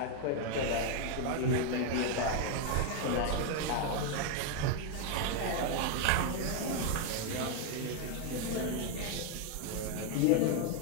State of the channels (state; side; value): different; both; correlation 0.01